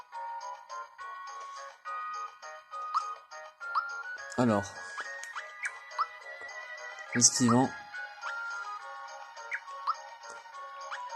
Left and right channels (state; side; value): identical; both; correlation 1.00